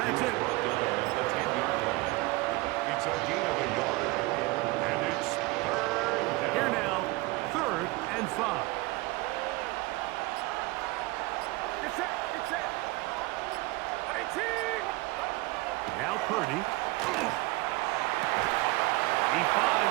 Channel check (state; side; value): quieter; left; 22.0 dB